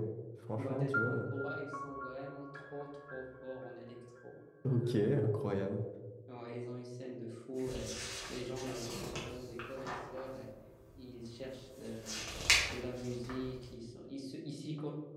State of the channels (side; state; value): both; identical; correlation 1.00